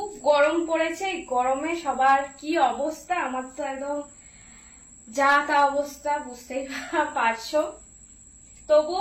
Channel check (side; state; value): both; identical; correlation 1.00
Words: গরম পড়েছে, এই গরমে সবার কি অবস্থা, আমার তো একদম যা তা অবস্থা, বুঝতেই পারছো। তবু